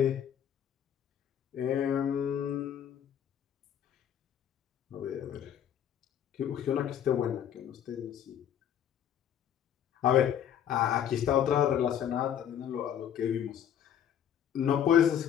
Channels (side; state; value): right; quieter; 9.5 dB